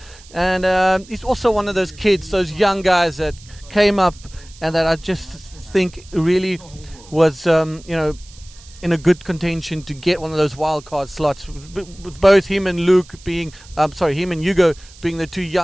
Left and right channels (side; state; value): right; noise; hiss, 23 dB below the sound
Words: And he's also one of those kids, those young guys that came up and that I just think really was, in a good contention to get one of those wild card slots. With both him and Hugo being the two